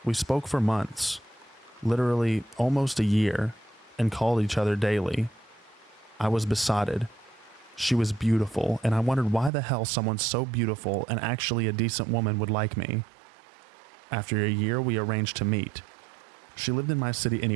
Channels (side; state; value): left; drops out; at 9.5 s